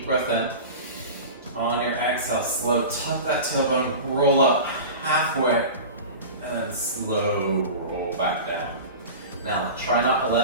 breath in. On your exhale, slow, tuck that tailbone, roll up halfway, and then slow roll back down. Now, try not to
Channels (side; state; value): both; inverted; correlation -0.32